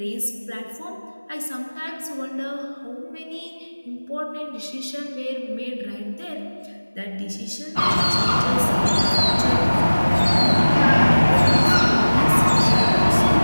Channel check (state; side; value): inverted; both; correlation -1.00